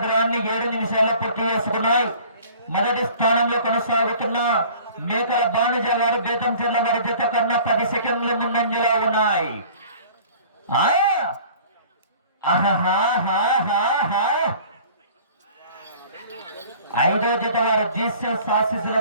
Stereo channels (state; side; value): inverted; both; correlation -0.48